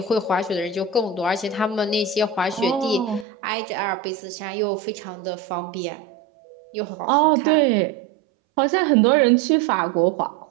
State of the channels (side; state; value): left; drops out; at 3.2 s